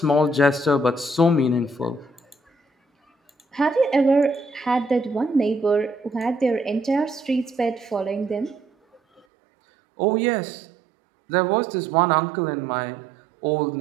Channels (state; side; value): drops out; left; at 9.2 s